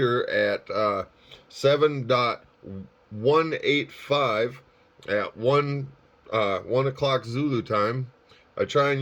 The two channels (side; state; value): both; identical; correlation 1.00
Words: at 7.185 at 1 o'clock Zulu time. I try and